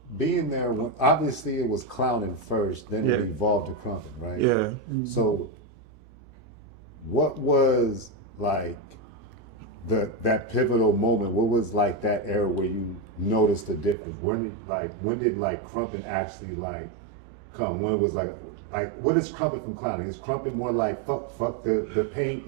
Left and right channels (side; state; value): left; drops out; at 14.0 s